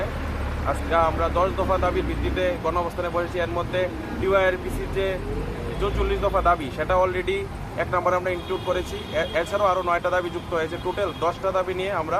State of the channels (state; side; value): identical; both; correlation 1.00